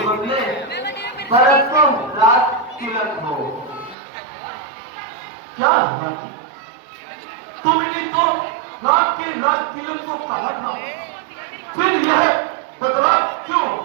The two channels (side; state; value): left; drops out; at 4.0 s